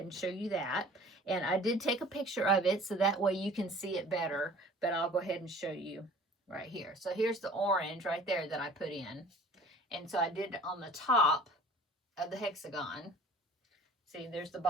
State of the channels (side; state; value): both; normal; correlation 0.48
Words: and show you that. And I did take a picture of it so that way you can see it better, but I'll go ahead and show you right here. So here's the orange right there that I put in. And so I did it on the top of the hexagon. See, there's the